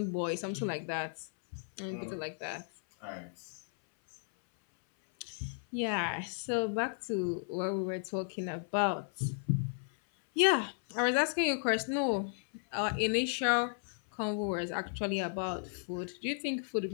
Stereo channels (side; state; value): right; silent; 55 dB below the other